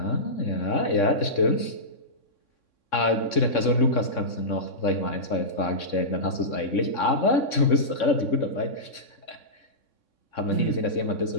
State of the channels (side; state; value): right; late; 3.6 ms